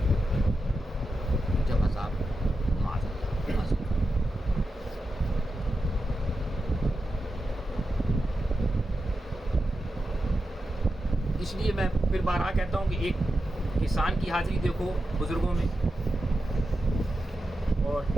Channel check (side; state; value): both; normal; correlation 0.90